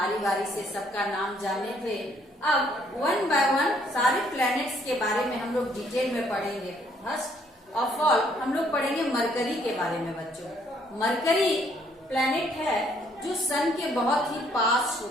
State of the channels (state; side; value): normal; both; correlation 0.66